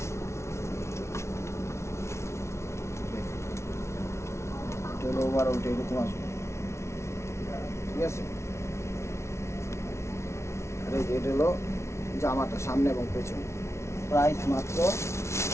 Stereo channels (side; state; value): right; late; 0.13 ms